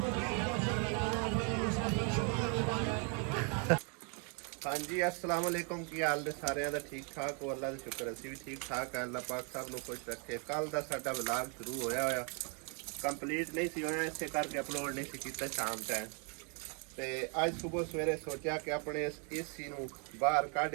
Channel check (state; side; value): quieter; left; 38.1 dB